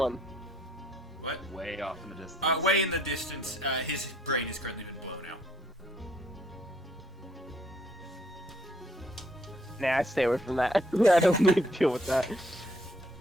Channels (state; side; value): normal; both; correlation 0.67